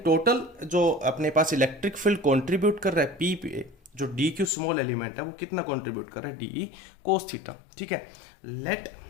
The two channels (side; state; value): right; drops out; at 4.5 s